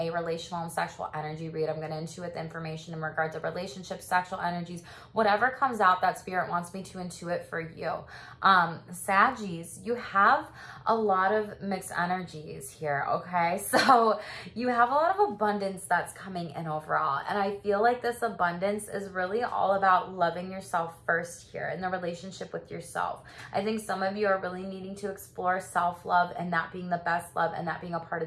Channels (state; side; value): identical; both; correlation 1.00